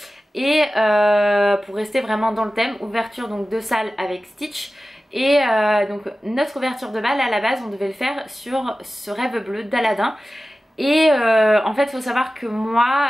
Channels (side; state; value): both; normal; correlation 0.95